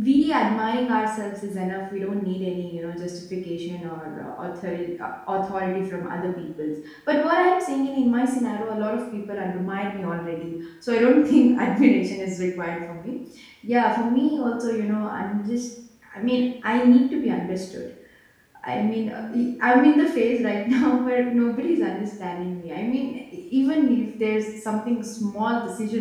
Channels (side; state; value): both; identical; correlation 1.00